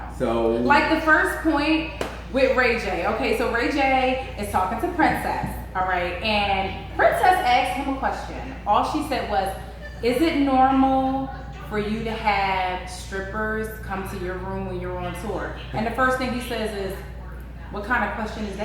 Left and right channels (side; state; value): both; identical; correlation 1.00